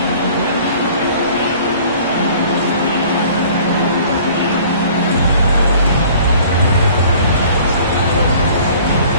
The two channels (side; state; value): both; inverted; correlation -0.51